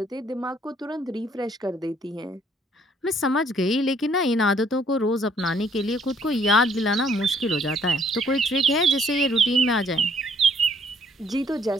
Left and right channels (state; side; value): normal; both; correlation 0.64